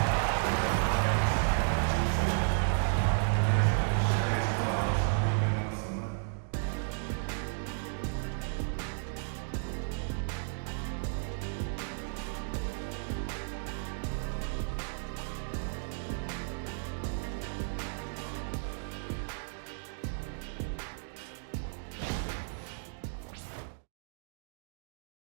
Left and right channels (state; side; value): silent; left; digital silence